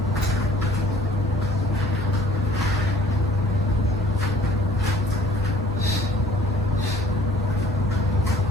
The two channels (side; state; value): both; normal; correlation 0.53